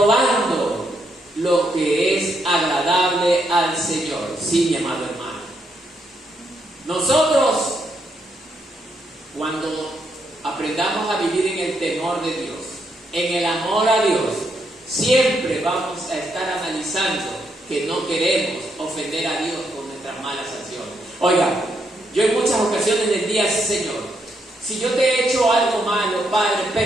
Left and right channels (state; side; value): normal; both; correlation 0.78